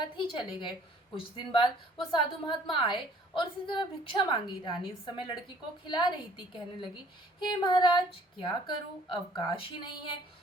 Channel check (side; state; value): both; normal; correlation 0.56